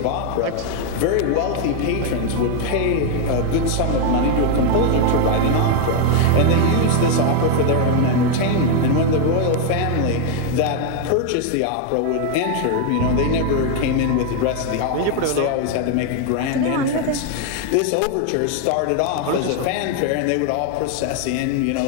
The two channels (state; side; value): different; both; correlation 0.01